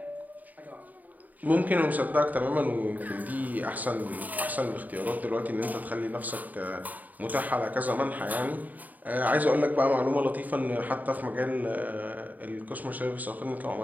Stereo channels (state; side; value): late; left; 0.080 ms